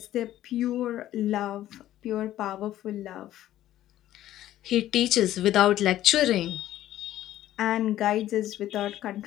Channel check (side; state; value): right; quieter; 13.4 dB